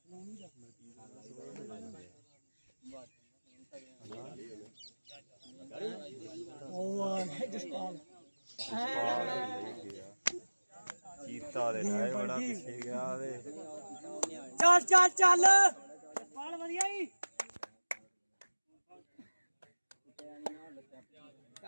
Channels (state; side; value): inverted; both; correlation -1.00